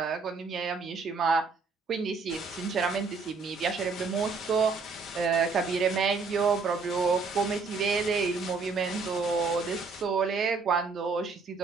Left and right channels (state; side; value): quieter; left; 4.5 dB